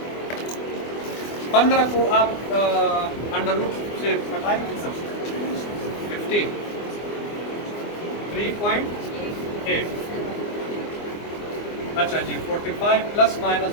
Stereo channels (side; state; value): right; late; 24 ms